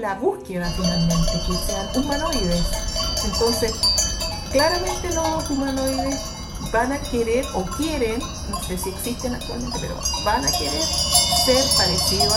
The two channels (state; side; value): identical; both; correlation 1.00